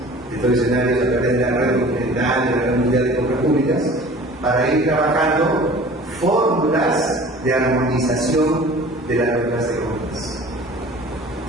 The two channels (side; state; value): both; normal; correlation 0.45